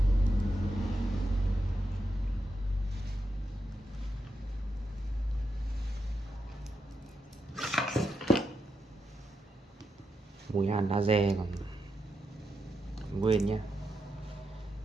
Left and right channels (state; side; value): normal; both; correlation 0.85